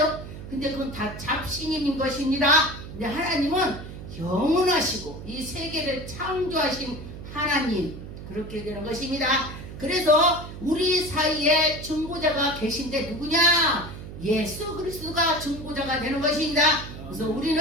근데 그건 다 잡신인 것입니다. 근데 하나님은 영원하시고 이 세계를 창조하신 하나님, 그렇게 되는 것입니다. 그래서 우리 사이에 중보자가 계신데 누구냐? 예수 그리스도가 중보자가 되는 것입니다. 그래서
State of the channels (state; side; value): noise; right; hum, 12 dB below the sound